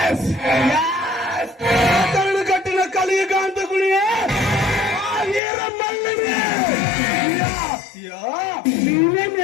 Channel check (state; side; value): drops out; right; at 5.4 s